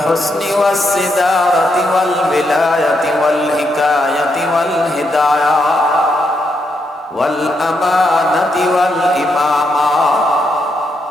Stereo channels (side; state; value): both; normal; correlation 0.80